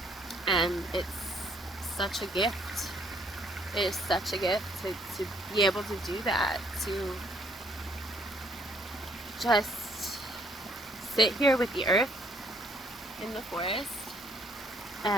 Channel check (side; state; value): both; normal; correlation 0.65